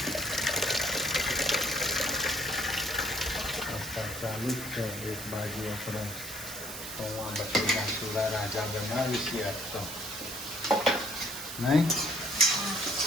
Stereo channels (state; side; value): noise; right; hiss, 9 dB below the sound